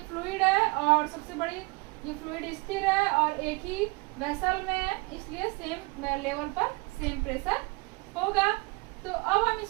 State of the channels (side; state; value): left; quieter; 26.5 dB